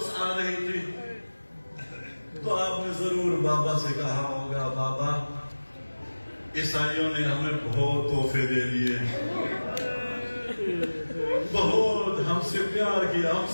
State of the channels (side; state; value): both; inverted; correlation -1.00